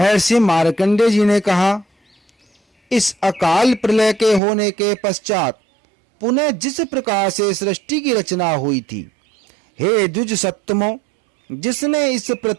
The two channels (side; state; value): left; drops out; at 4.4 s